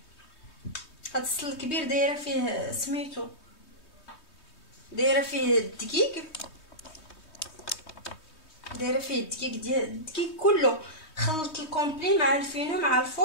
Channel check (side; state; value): right; late; 3.2 ms